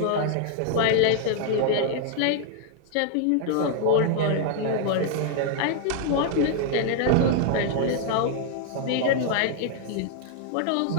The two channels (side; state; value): both; different; correlation 0.00